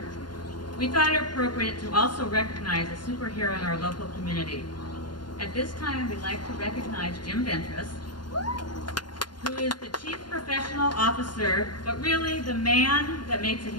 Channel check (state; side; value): late; right; 0.71 ms